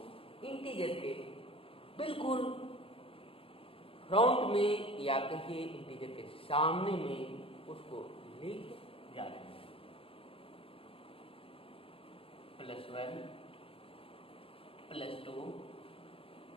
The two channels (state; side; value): late; right; 0.26 ms